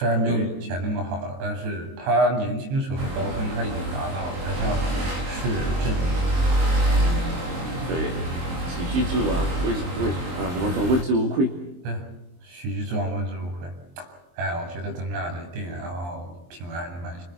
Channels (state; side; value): late; left; 23 ms